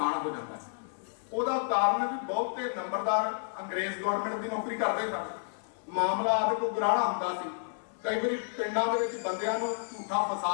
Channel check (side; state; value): right; silent; 57 dB below the other